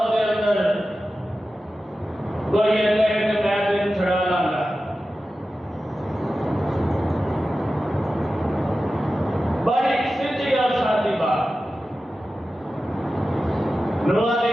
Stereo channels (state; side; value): normal; both; correlation 0.94